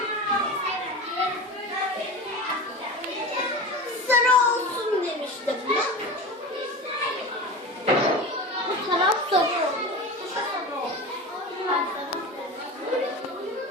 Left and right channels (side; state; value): both; normal; correlation 0.29